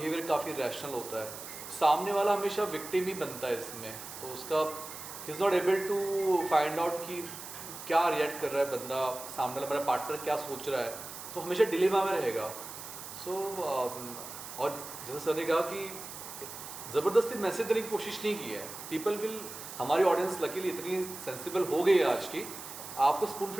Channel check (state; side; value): noise; right; hiss, 11 dB below the sound